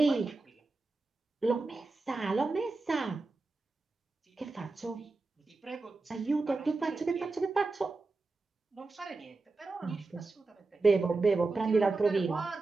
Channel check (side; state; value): left; quieter; 3.6 dB